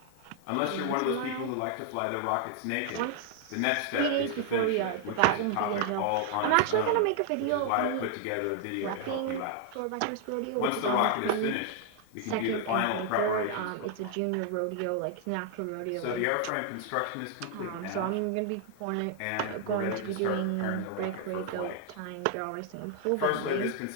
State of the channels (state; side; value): different; both; correlation 0.00